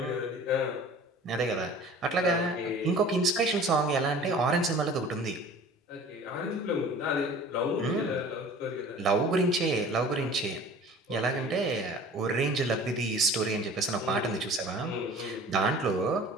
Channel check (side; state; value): both; normal; correlation 0.44